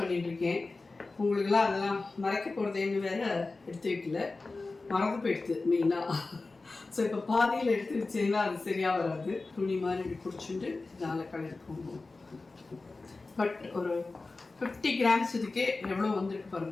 உங்களுக்கெல்லாம் அதெல்லாம் மறைக்க போகிறதேன்னு வேறு எடுத்து வைக்கல, மறந்து போயிடுது மெயினாக. ஸோ இப்போ பாதியில் எடுத்து வச்சீங்கன்னா அது சரியாக வராது. துணி மாதிரி இப்படி பிடிச்சிட்டு இதனால் கலருக்கு போகும். பட் ஒரு 50 கிராம்ஸ் இதுக்கே எவ்வளோ வந்துருக்கு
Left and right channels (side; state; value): right; quieter; 3.6 dB